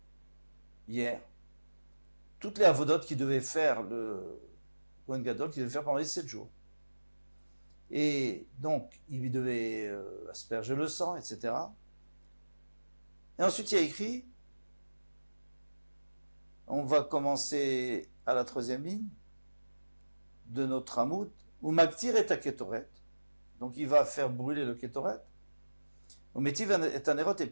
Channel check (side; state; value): both; inverted; correlation -1.00